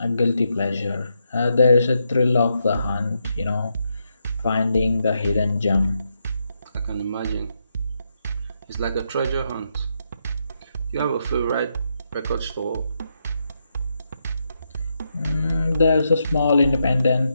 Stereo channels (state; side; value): inverted; both; correlation -0.82